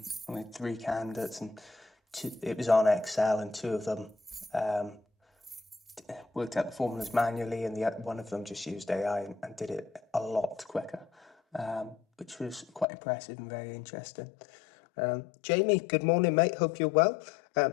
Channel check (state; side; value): drops out; right; at 12.9 s